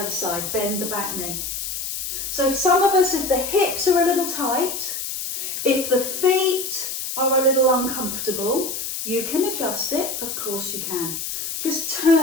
side. Bend the back knee. So some of us, if the hips are a little tight, if the feet are a little uncomfortable, you can adjust it. Of course you can. Just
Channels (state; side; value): noise; left; hiss, 5 dB below the sound